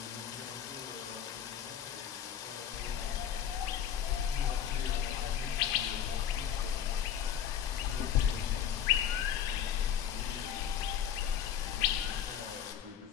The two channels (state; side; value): quieter; right; 9.3 dB